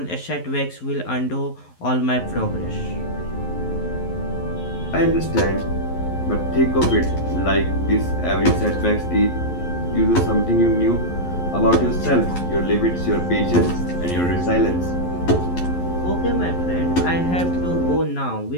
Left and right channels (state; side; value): late; right; 11 ms